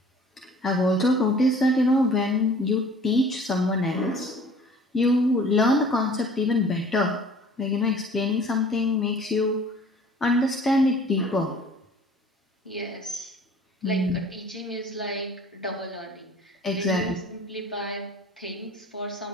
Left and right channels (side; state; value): both; normal; correlation 0.50